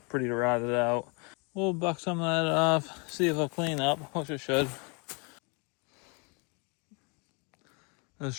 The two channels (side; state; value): right; quieter; 32.5 dB